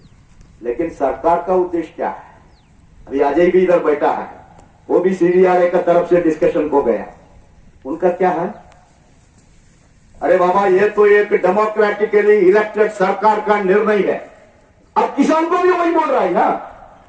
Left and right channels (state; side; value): identical; both; correlation 1.00